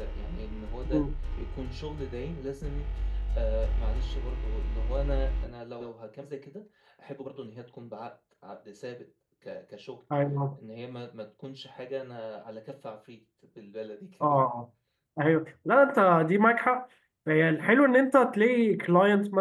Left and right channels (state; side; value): identical; both; correlation 1.00